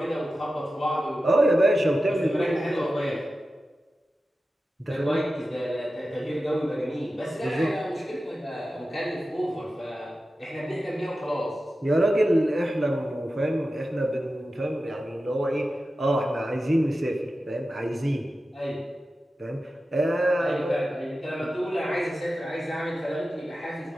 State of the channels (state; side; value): normal; both; correlation 0.93